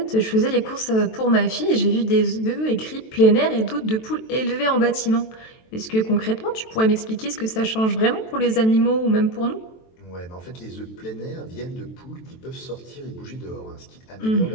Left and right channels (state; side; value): late; right; 23 ms